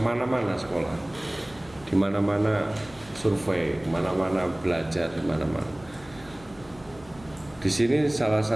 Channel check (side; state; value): left; noise; hum, 22 dB below the sound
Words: sekolah, di mana-mana survei, kemana-mana belajar, di mana-mana. Di sini salah